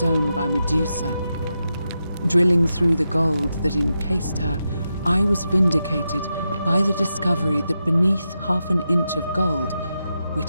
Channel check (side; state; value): both; inverted; correlation -0.88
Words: by Medusa. Drilling through the gold that encased her, I was vindicated by the discovery that beneath half an inch of gold,